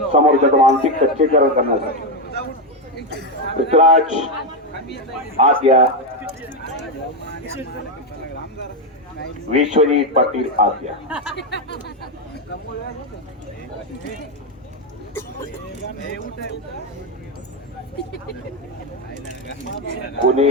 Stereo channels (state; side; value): normal; both; correlation 0.06